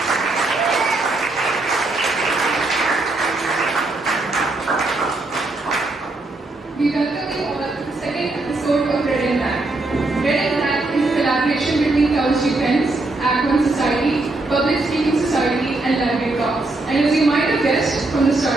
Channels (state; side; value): quieter; left; 3.0 dB